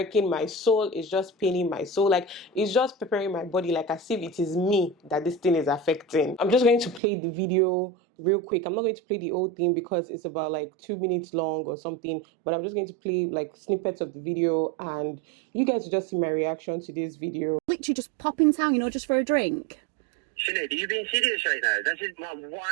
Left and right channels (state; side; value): drops out; left; at 7.0 s